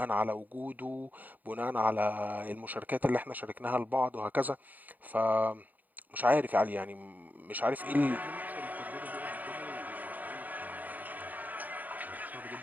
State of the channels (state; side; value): late; left; 0.083 ms